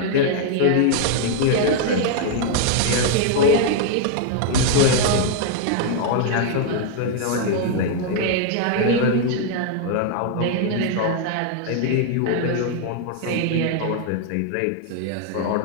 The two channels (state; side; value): different; both; correlation 0.00